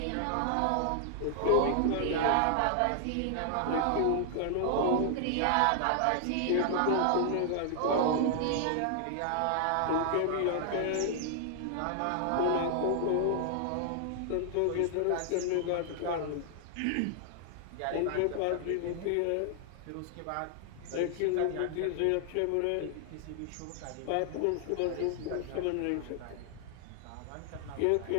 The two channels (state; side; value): different; both; correlation 0.00